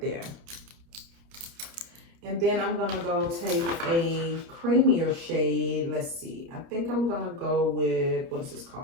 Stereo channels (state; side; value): late; left; 30 ms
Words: there. And then I'm gonna go take a creamier shade. Let's see, I think I'm gonna go with, what is this